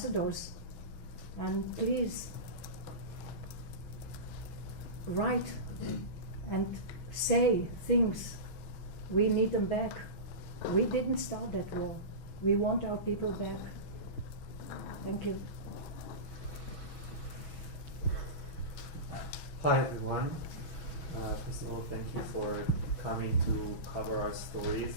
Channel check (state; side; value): late; right; 6.2 ms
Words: and please write and say things. We need them back. We didn't start that war. We want our people back. Thank you. Hi everyone. First of all, thank you for coming to cover our